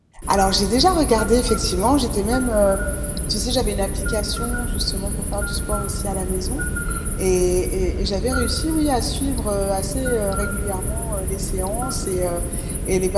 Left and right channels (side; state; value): both; identical; correlation 1.00